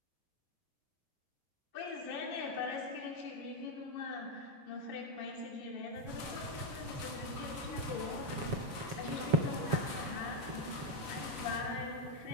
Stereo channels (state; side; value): late; left; 7.3 ms